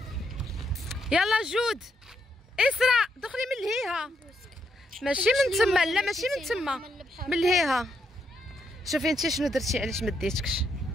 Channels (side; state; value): both; normal; correlation 0.78